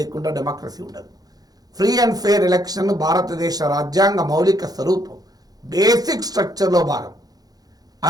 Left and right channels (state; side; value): late; left; 0.19 ms